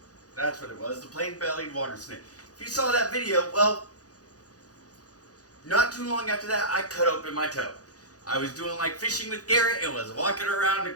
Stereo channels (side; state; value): right; late; 0.67 ms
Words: That's what it was, the plain-bellied water snake. If you saw that video, well, not too long after that, I cut open my toe. I was doing like fishing with Garrett and was walking around the